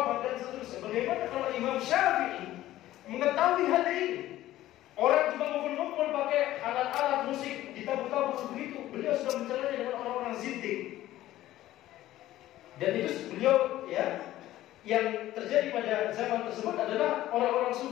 dan seterusnya. Bagaimana kalau Imam Syafi'i mengetahui hal ini? Orang cuma ngumpul-ngumpul pakai alat-alat musik, ditabur-tabur begitu. Beliau sudah mencelanya dengan orang-orang zindik. Dan itu beliau, ya, yang terjadi pada zaman tersebut adalah orang-orang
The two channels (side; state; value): right; quieter; 14.7 dB